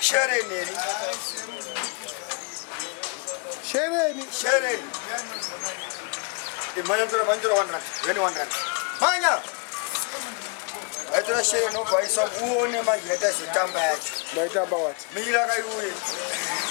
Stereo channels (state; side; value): quieter; right; 35.2 dB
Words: Shereni. Imanya tora 100. When 100. Manya. Aitora shereni no kwaisa uone manje hata sitamba yacho. Maitamba what? Mila kayuye.